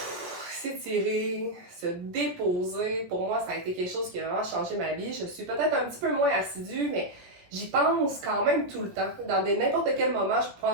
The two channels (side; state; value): left; late; 17 ms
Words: s'étirer, se déposer, pour moi, ça a été quelque chose qui a vraiment changé ma vie. Je suis peut-être un petit peu moins assidue, mais j'y pense quand même tout le temps. Dans n'importe quel moment, je peux